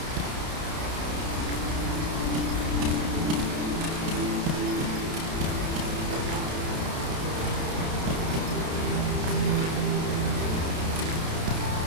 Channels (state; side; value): late; left; 30 ms